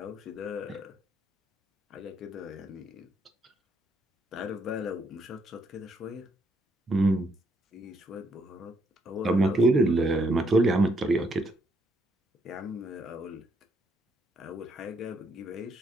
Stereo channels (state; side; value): normal; both; correlation 0.73